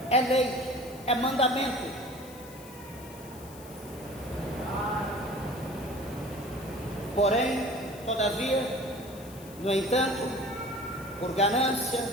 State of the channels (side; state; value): left; noise; hiss, 19 dB below the sound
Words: é lei, é mandamento. Porém, todavia, no entanto, por